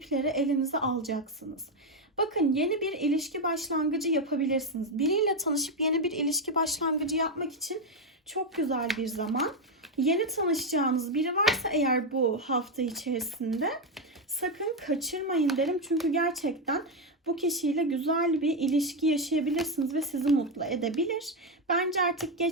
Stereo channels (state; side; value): normal; both; correlation 0.06